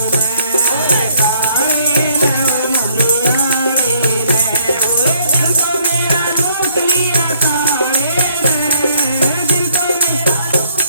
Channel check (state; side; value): inverted; both; correlation -0.64